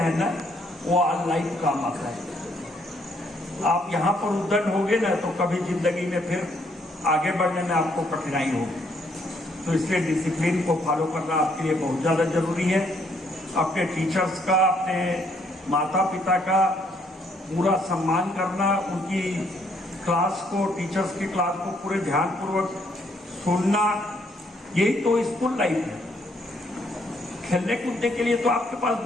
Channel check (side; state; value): both; normal; correlation 0.69